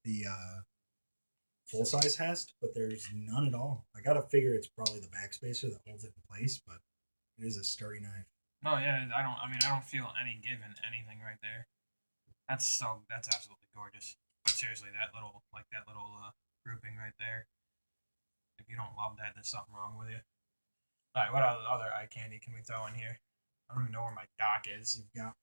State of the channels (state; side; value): inverted; both; correlation -1.00